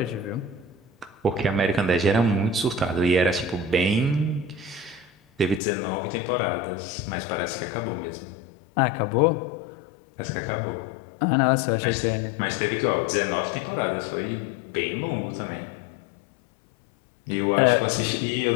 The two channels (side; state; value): right; drops out; at 5.6 s